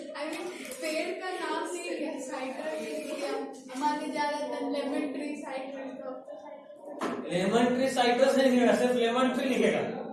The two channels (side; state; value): both; identical; correlation 1.00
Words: पेड़ का नाम नहीं लिया, साइट्रस हमारे ज्यादातर lemon tree citrus, lemon tree citrus नहीं लिखेगा, सिर्फ लेमन ट्री लिखेगा।